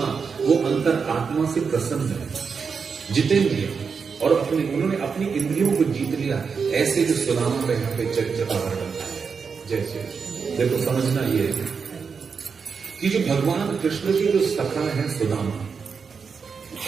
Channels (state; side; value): quieter; left; 5.7 dB